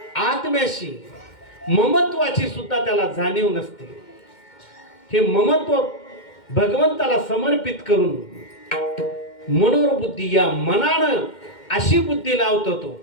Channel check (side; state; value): right; late; 2.1 ms